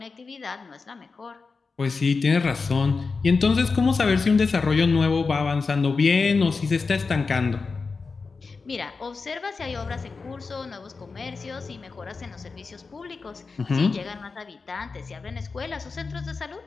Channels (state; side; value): quieter; right; 4.5 dB